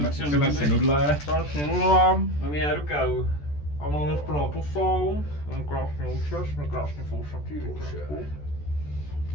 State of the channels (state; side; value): late; right; 14 ms